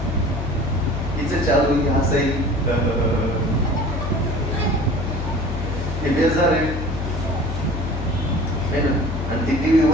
हिचं चालू की हसाई हे बेजार आहे ना. आणि ती टीव्ही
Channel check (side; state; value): left; noise; hum, 4 dB below the sound